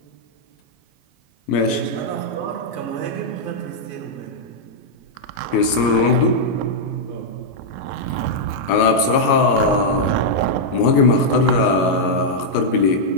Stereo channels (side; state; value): right; late; 21 ms